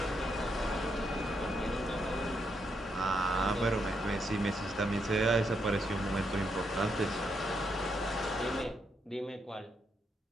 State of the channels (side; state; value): both; normal; correlation 0.79